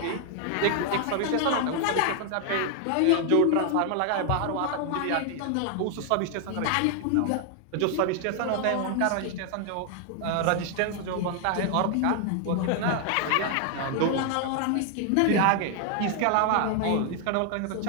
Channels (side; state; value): both; different; correlation 0.00